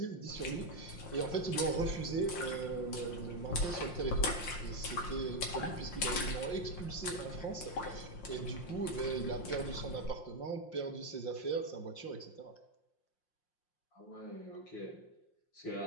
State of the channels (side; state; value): right; late; 5.7 ms